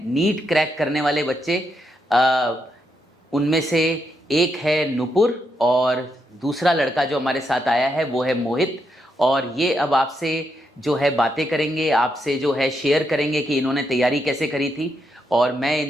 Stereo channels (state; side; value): normal; both; correlation 0.81